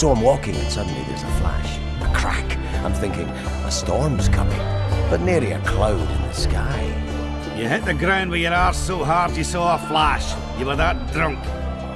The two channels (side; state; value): both; identical; correlation 1.00